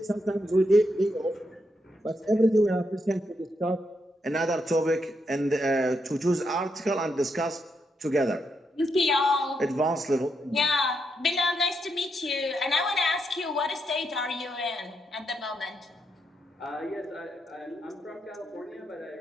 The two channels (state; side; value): normal; both; correlation 0.81